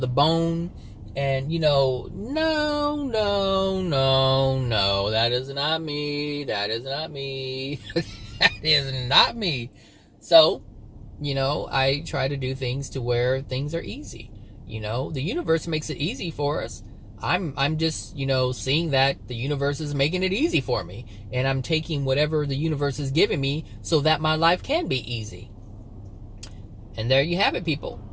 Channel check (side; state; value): both; identical; correlation 1.00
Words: bone. And, you know, no, that is not me. That is not me. That is not me. So, you know, I try to do things to where things are easy. You know, the universe makes it easy for us. I'm just, you know, seeing that the universe is making it easy for me. And I'm taking whatever the universe is giving me so that my life can be easy. And there you have it, people.